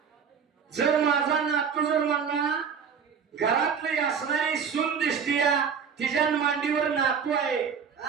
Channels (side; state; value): left; quieter; 6.7 dB